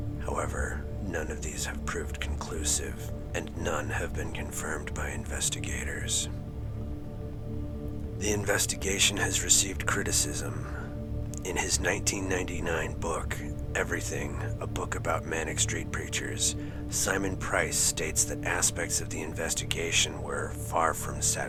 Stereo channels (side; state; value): both; identical; correlation 1.00